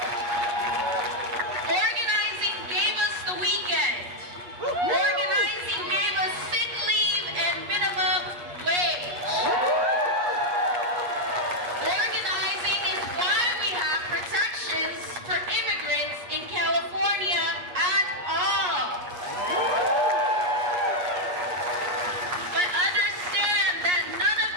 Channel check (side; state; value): left; late; 8.4 ms